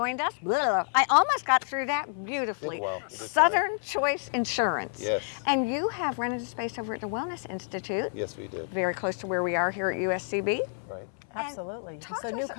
us. Blah. I almost got through that beautifully. Southern Choice Insurance. Yes. And you have rented a space over at the Wellness Institute. Yes, we did. Very close to where we are here at USCB. Right. Absolutely. It's a new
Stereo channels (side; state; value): right; silent; 59 dB below the other